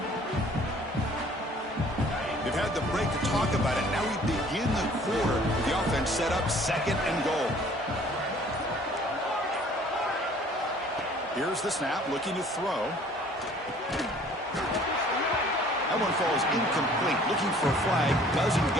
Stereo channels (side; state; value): both; normal; correlation 0.54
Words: They've had the break to talk about it. Now we begin the quarter with the offense set up 2nd and goal. Here's the snap, looking to throw. That one falls incomplete. Looking for a flag, doesn't